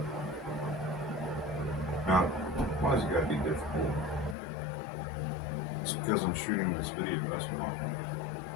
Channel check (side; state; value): right; drops out; at 4.4 s